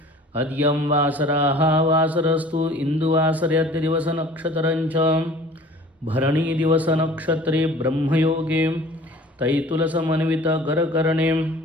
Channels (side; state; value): both; normal; correlation 0.47